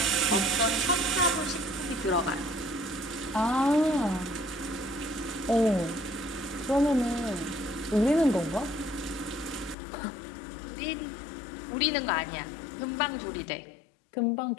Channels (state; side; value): drops out; right; at 9.8 s